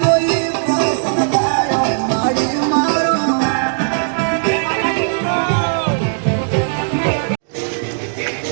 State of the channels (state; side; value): silent; left; digital silence